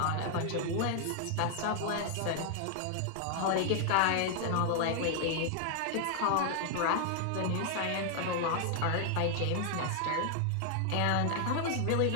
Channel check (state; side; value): different; both; correlation 0.00